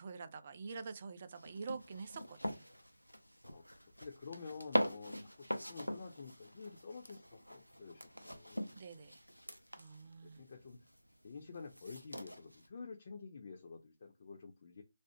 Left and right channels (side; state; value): both; inverted; correlation -0.94